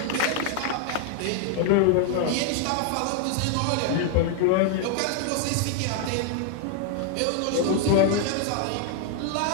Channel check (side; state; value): both; different; correlation 0.00